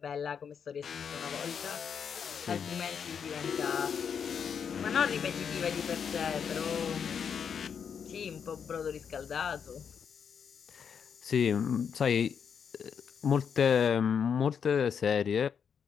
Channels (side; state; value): right; quieter; 7.1 dB